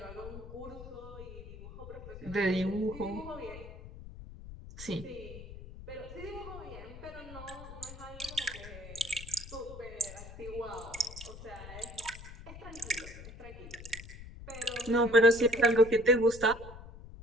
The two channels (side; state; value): left; noise; rumble, 13 dB below the sound